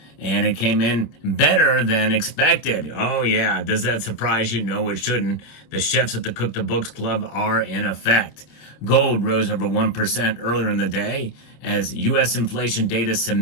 and it came in better than expected. Oh yeah, does that surprise you? No, it shouldn't. The chefs at the Cook the Books Club are in effect. Gold rose over 1% earlier in the day as U.S. inflation data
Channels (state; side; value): late; right; 26 ms